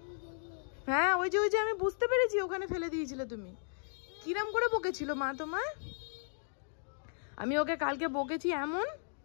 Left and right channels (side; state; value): right; silent; digital silence